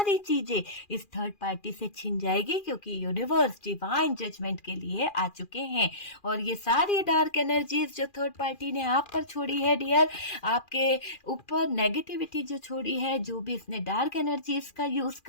चीजें इस थर्ड पार्टी से छीन जाएगी, क्योंकि यूनिवर्स डिवाइन जजमेंट के लिए आ चुके हैं। और ये सारी डार्क एनर्जीज जो थर्ड पार्टी ने आप पर छोड़ी है डियर, आपके ऊपर नेगेटिविटी जो छोड़ी है, जो भी इसने डार्क एनर्जीज का यूज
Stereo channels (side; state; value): right; late; 2.4 ms